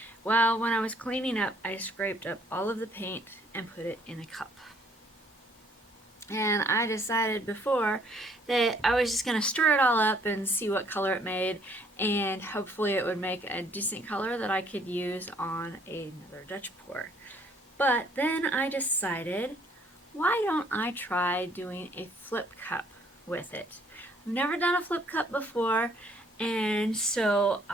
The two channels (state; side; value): normal; both; correlation 0.63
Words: Well, when I was cleaning up, I scraped up all of the paint and put it in a cup. And I decided before that I was just going to stir it all up and see what color it made, and hopefully it would make a decent color that I could use on another Dutch pour. But then I decided, why don't I try doing a flip cup with it? I've never done a flip cup before, and so